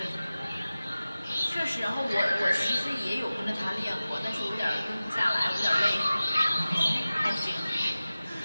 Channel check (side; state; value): both; inverted; correlation -0.96